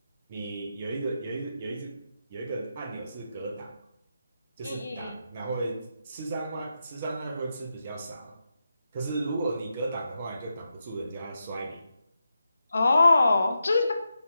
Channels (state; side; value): inverted; both; correlation -0.87